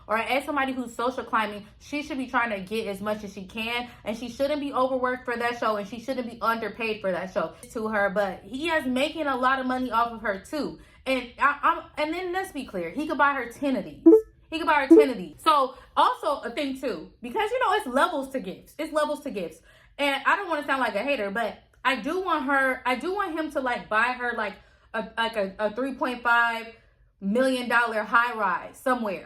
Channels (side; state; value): both; identical; correlation 1.00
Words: or as somebody who's social climbing, she should be trying to get as much as she can, and she shouldn't be overworked for that show, and she shouldn't be underpaid for that show to her. But he is making a lot of money off of her too. And and then let's be clear, he could buy her 10 of these. He could buy her 10 of these. So also a thing too, because you know it's levels to gifts. It's levels to gifts. And I don't want to sound like a hater, but I do want him to like buy her like a $3.5 million high rise